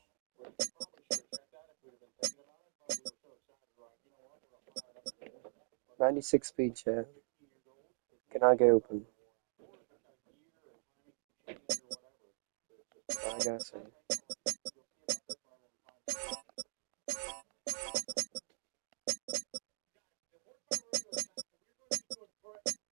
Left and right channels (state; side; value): silent; left; digital silence